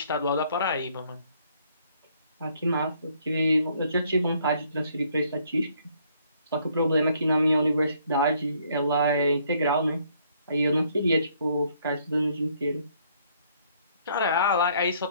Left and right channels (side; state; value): both; inverted; correlation -0.66